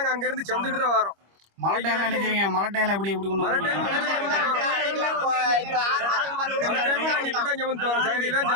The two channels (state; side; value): late; left; 25 ms